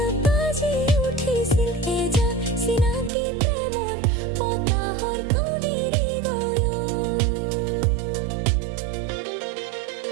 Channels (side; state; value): left; drops out; at 3.1 s